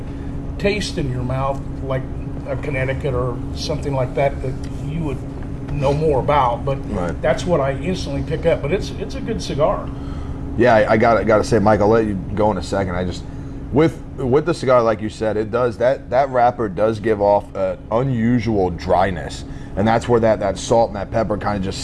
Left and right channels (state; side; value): identical; both; correlation 1.00